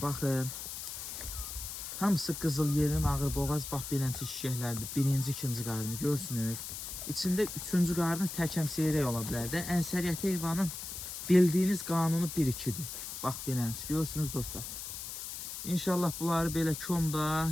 baxın. Hamısı qızıl yelin ağır boğaz bax beləncə şişəklərdir. Birinci, ikinci qarnı görsünüz. İçində üçüncü qarnı təkəm seyrək ola bilər də. Ənsəriyyət heyvanın bildiyiniz qanunu 1-2-dir. Bax beləncə görürsünüz dostlar. İnşallah bunları belə komda,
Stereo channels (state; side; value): noise; left; hiss, 7 dB below the sound